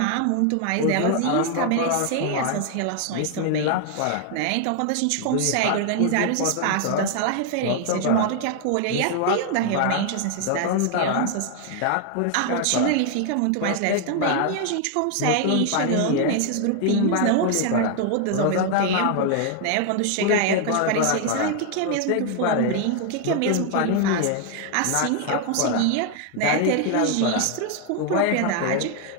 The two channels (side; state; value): both; different; correlation 0.00